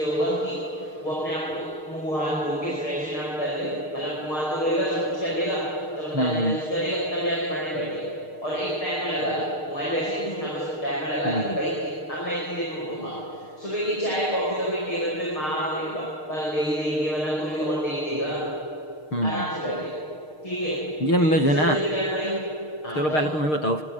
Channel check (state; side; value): late; right; 6.5 ms